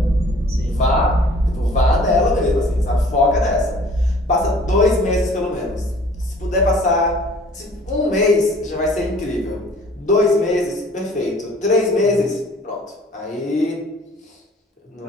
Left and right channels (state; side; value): normal; both; correlation 0.52